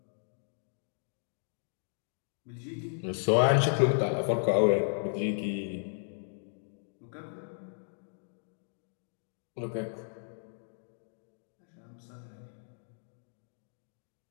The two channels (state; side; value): silent; right; digital silence